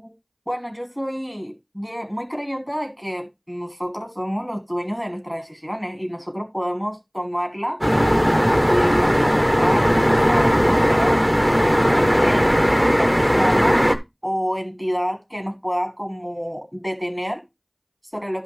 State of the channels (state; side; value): identical; both; correlation 1.00